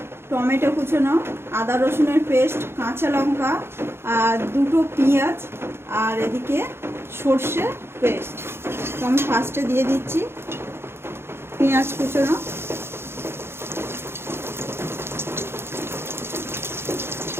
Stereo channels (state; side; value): late; left; 0.12 ms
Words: টমেটো কুচোনো, আদা রসুনের পেস্ট, কাঁচা লঙ্কা আর দুটো পেঁয়াজ, আর এদিকে সর্ষে পেস্ট। তো আমি ফার্স্টে দিয়ে দিচ্ছি পেঁয়াজ কুচোনো,